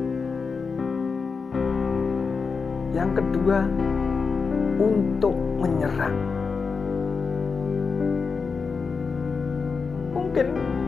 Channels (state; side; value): quieter; right; 5.1 dB